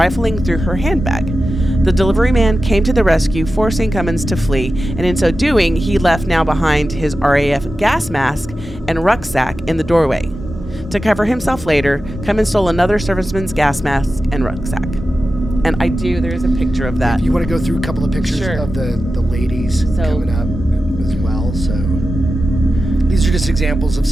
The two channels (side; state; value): both; normal; correlation 0.93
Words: through her handbag. The delivery man came to the rescue, forcing Cummins to flee, and in so doing, he left now behind his RAF gas mask and rucksack in the doorway. To cover himself later, Cummins stole another serviceman's gas mask and rucksack. And there is a picture of that. If you want to go through a couple of pictures of the ladies coming up as well. So these are just examples of